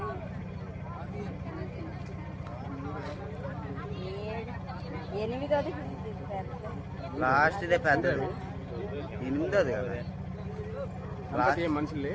8ది లాస్ట్ ఇదే పెద్దది 8ది కదా లాస్ట్ మనుషులే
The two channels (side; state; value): both; identical; correlation 1.00